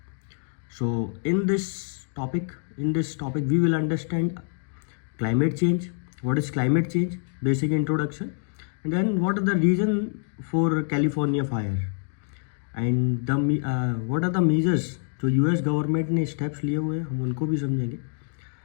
So in this topic we will understand climate change, what is climate change, basic introduction, and then what are the reason for California fire and what are the measures जो US government ने steps लिए हुए हैं हम उनको भी समझेंगे,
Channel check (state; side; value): silent; right; 59 dB below the other